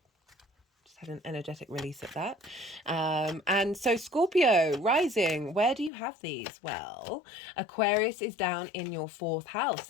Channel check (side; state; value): right; drops out; at 5.9 s